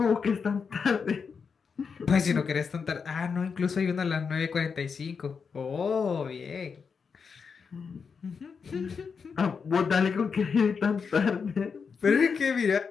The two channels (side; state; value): right; quieter; 5.8 dB